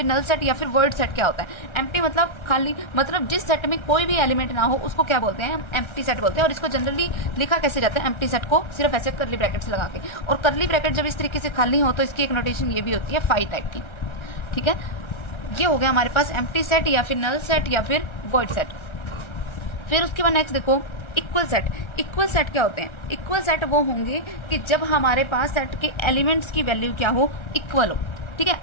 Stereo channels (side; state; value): right; late; 1.3 ms